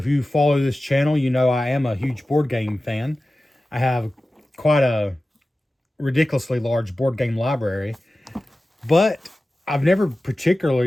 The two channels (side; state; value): both; normal; correlation 0.95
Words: you follow this channel, you know I am a huge board game fan. I have quite a ridiculously large board game library, but I've never